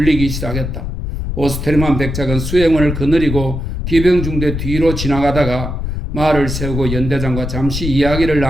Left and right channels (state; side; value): noise; left; rumble, 4 dB below the sound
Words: 시작했다. 오스테르만 백작은 수행원을 거느리고 기병 중대 뒤로 지나가다가 말을 세우고 연대장과 잠시 이야기를